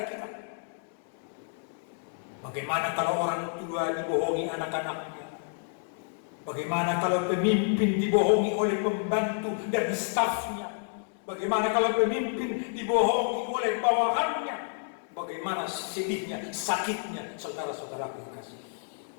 kita. Bagaimana kalau orang tua dibohongi anak-anaknya? Bagaimana kalau pemimpin dibohongi oleh pembantu dan stafnya? Bagaimana kalau pemimpin dibohongi oleh bawahannya? Bagaimana sedihnya, sakitnya, saudara-saudara yang kasih.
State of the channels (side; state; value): right; silent; digital silence